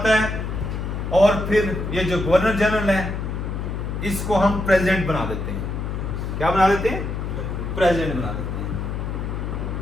है, और फिर ये जो गवर्नर जनरल है इसको हम प्रेसिडेंट बना देते हैं। क्या बना देते हैं? प्रेसिडेंट बना देते हैं।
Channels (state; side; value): noise; left; hum, 4 dB below the sound